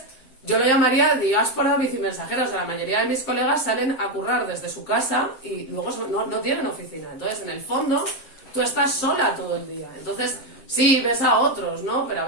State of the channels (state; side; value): late; right; 7.7 ms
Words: yo lo llamaría diáspora bicimensajera, o sea, la mayoría de mis colegas salen a currar desde su casa y luego no tienen oficina, entonces en el fondo tú estás sola todo el día, entonces sí, ves a otros, ¿no? Pero a